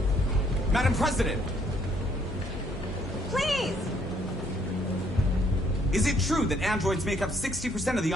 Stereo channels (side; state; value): both; normal; correlation 0.67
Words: Madam President! Please! Is it true that androids make up 60% of the